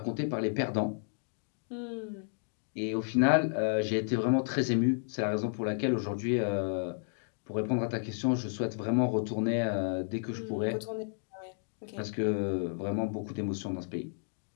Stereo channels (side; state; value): right; silent; digital silence